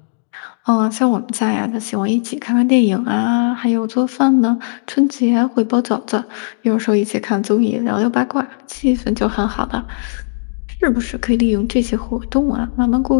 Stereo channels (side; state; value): right; silent; digital silence